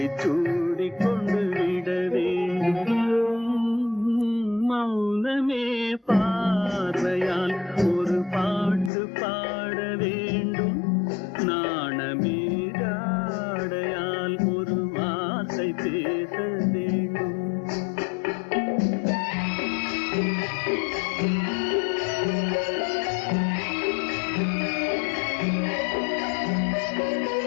சூடி கொண்டு விட வேண்டும். மௌனமே பார்வையால் ஒரு பாட்டு பாட வேண்டும். நாணமே ஜாடையால் ஒரு வார்த்தை பேச வேண்டும்.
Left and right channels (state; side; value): drops out; right; at 8.9 s